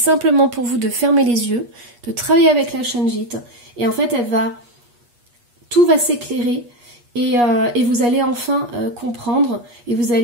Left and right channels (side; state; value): left; late; 8.4 ms